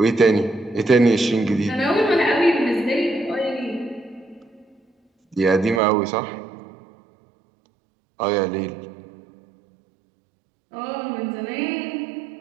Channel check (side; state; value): left; drops out; at 5.8 s